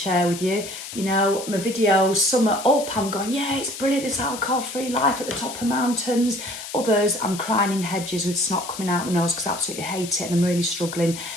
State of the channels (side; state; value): left; noise; hiss, 10 dB below the sound